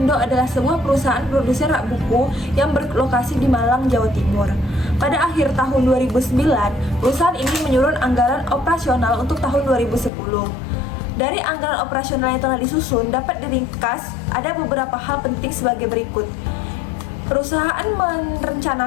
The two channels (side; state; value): right; drops out; at 10.1 s